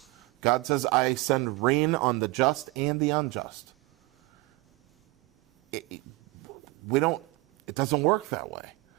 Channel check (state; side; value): quieter; left; 23.0 dB